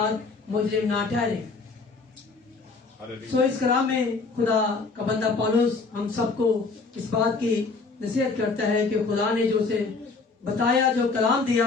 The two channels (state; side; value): quieter; right; 4.1 dB